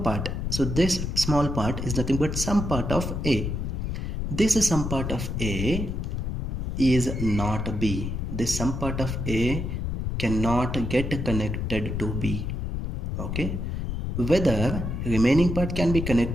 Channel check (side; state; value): left; noise; rumble, 2 dB below the sound